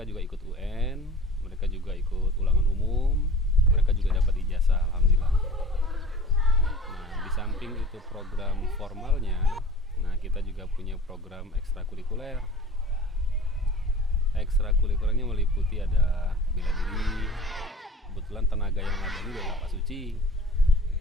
juga ikut UN, mereka juga ikut ulangan umum, mereka juga dapat ijazah alhamdulillah. Nah, di samping itu program formalnya, nah kita juga punya program ekstrakurikuler. Ekstrakurikulernya meliputi ada bela diri. Kebetulan tenaga yang ada ini adalah Pak Suci.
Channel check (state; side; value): normal; both; correlation 0.43